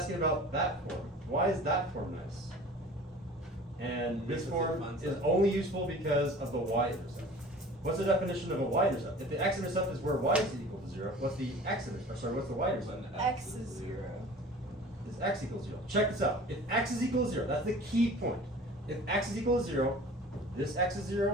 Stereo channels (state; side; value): normal; both; correlation 0.43